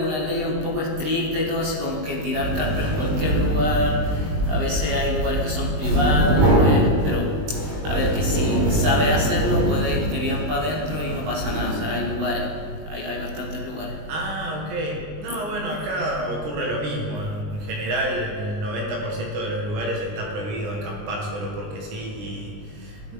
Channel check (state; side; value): late; left; 20 ms